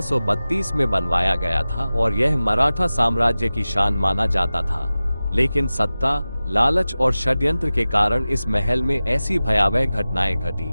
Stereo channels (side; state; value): both; inverted; correlation -0.96